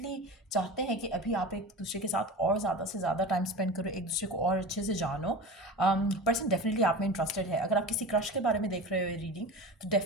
चाहते हैं कि अभी आप एक दूसरे के साथ और ज़्यादा से ज़्यादा टाइम स्पेंड करो, एक दूसरे को और अच्छे से जानो। पर्सन डेफिनेटली आप में इंटरेस्टेड है। अगर आप किसी क्रश के बारे में देख रहे हो रीडिंग, तो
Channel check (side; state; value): both; normal; correlation 0.31